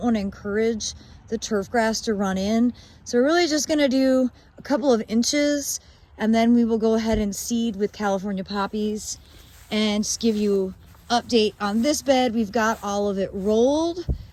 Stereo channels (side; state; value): both; identical; correlation 1.00